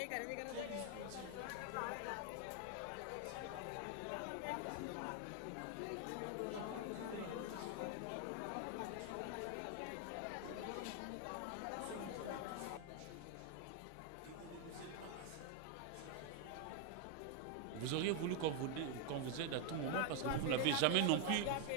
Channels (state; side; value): different; both; correlation 0.01